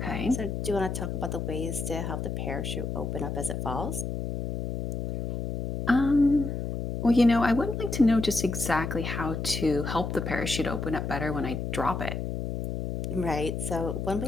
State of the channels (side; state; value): left; noise; hum, 3 dB below the sound